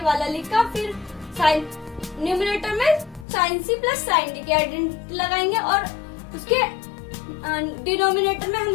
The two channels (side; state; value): right; drops out; at 3.2 s